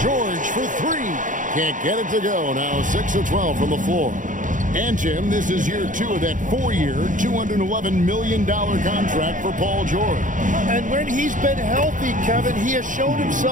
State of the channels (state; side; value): late; left; 0.38 ms